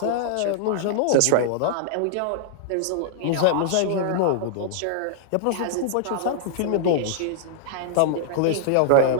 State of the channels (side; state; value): both; different; correlation -0.01